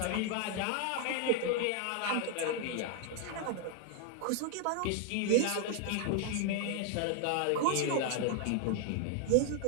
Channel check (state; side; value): different; both; correlation 0.01